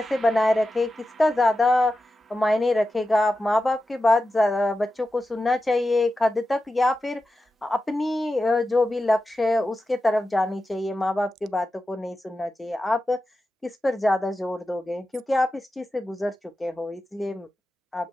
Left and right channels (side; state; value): both; normal; correlation 0.92